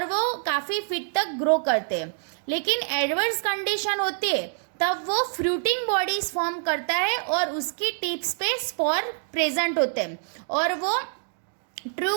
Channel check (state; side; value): silent; left; 61 dB below the other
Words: वो काफ़ी फीट तक ग्रो करते हैं। लेकिन एडवर्स कंडीशन होती है तब वो फ्रूटिंग बॉडीज फॉर्म करता है और उसकी टिप्स पे स्पोर प्रेजेंट होते हैं और वो